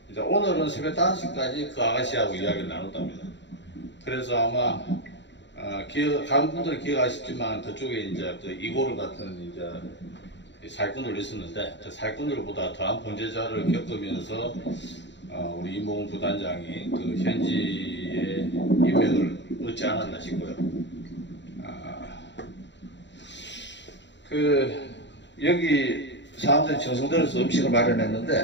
이제 오늘은 새벽 5시까지 그 아가씨하고 이야기를 나눴답니다. 그래서 아마 다른 분들은 기억하시지만 그쪽에 이제 그 이고르 같은 이제 사기꾼들 있었는데 그 사기꾼들보다 더한 범죄자를 겪으면서 우리 이모건 부단장이 그 현지의 인맥을 얻지 않았나 싶고요. 여기 사람들이 정성들여서 음식을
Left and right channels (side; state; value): right; late; 0.52 ms